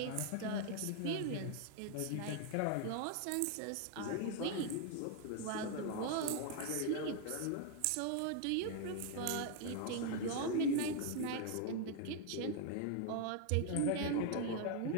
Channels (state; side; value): different; both; correlation 0.00